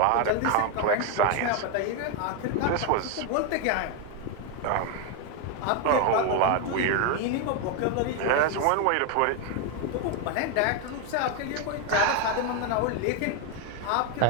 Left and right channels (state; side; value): different; both; correlation 0.01